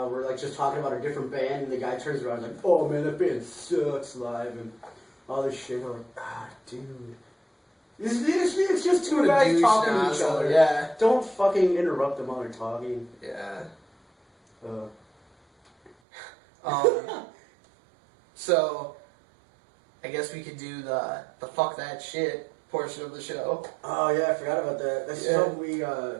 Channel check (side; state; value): left; drops out; at 16.0 s